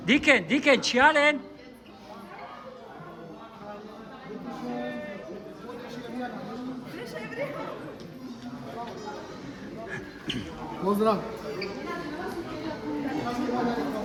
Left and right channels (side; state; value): both; identical; correlation 1.00